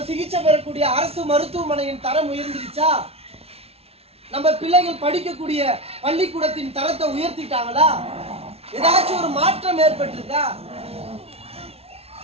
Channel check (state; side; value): late; left; 0.30 ms